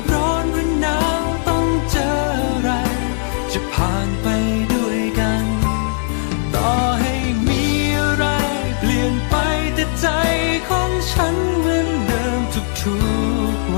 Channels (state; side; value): silent; right; digital silence